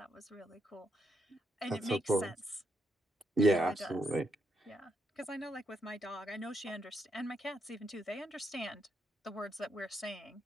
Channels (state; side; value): normal; both; correlation 0.79